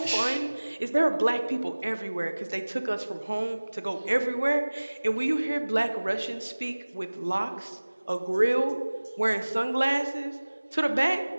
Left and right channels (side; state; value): both; inverted; correlation -1.00